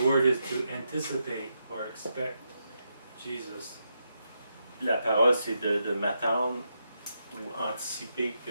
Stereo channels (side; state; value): both; inverted; correlation -0.83